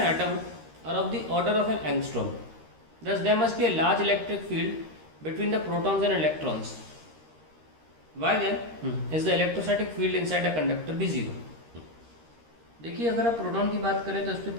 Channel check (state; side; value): late; left; 13 ms